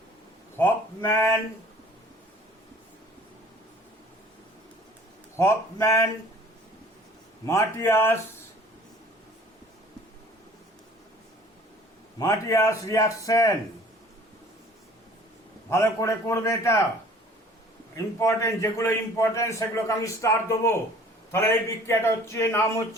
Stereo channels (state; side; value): normal; both; correlation 0.51